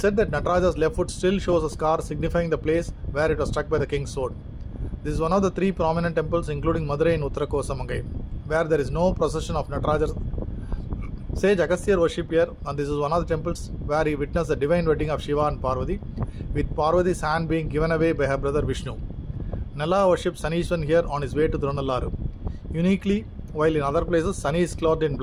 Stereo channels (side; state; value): both; identical; correlation 1.00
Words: that Natarajar's left foot still shows a scar signifying the place where it was struck by the king's sword. This is one of the 3 prominent temples, including Madurai in Uttara Kosamangai, where there is no procession of Natarajar. Sage Agasthyar worship here, and this is one of the temples where he witnessed the divine wedding of Shiva and Parvati, with Parvati's hand being given away by her brother Vishnu. Nala worships Sanishwan here on his way to Thirunalluru. Uniquely, while in other places Sani is clothed in